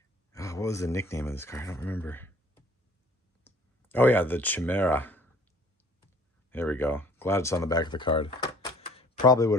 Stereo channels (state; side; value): normal; both; correlation 0.54